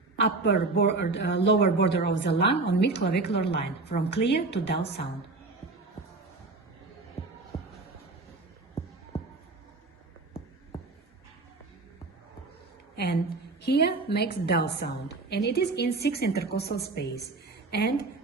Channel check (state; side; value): quieter; left; 3.6 dB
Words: lower border of the lung on mid-clavicular line, from clear to dull sound. And here makes dull sound, and it is in 6 intercostal space. And